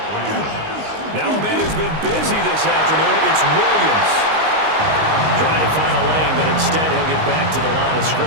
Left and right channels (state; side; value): late; left; 19 ms